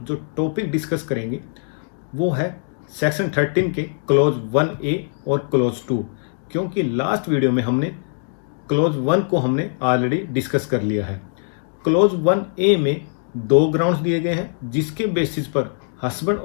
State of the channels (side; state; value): right; silent; 63 dB below the other